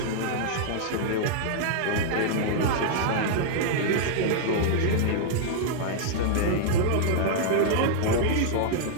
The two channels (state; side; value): different; both; correlation -0.01